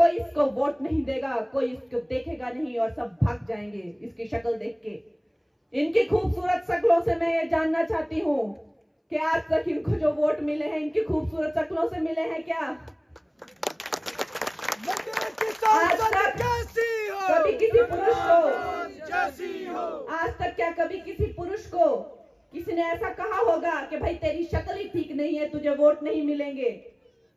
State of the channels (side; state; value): both; identical; correlation 1.00